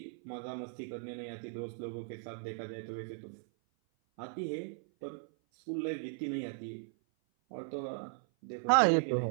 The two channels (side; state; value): left; silent; 53 dB below the other